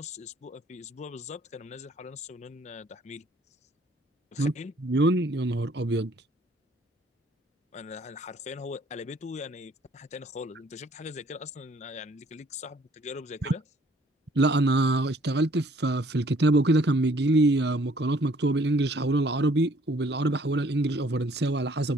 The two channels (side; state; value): both; normal; correlation 0.60